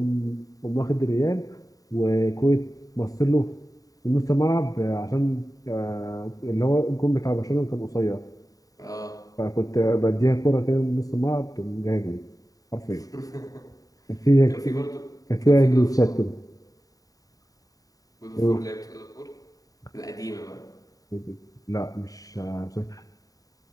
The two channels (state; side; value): late; right; 0.17 ms